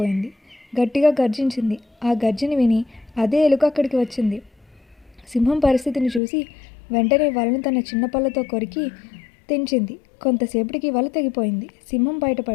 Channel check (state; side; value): drops out; right; at 6.2 s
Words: గట్టిగా గర్జించింది. ఆ గర్జన విని అదే ఎలుక అక్కడికి వచ్చింది. సింహం పరిస్థితిని చూసి వెంటనే వలను తన చిన్న పళ్ళతో కొరికి తెంచింది. కొంతసేపటికి వల తెగిపోయింది. సింహం